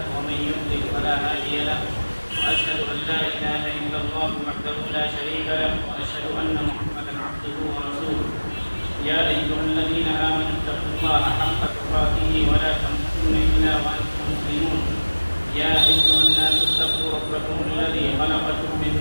ومن يضلل فلا هادي له وأشهد أن لا إله إلا الله وحده لا شريك له وأشهد أن محمدا عبده ورسوله يا أيها الذين آمنوا اتقوا الله حق تقاته ولا تموتن إلا وأنتم مسلمون يا أيها الناس اتقوا ربكم الذي خلقكم من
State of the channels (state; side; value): inverted; both; correlation -1.00